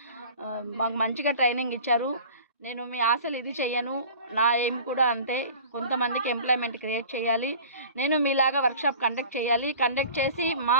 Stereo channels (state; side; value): inverted; both; correlation -0.42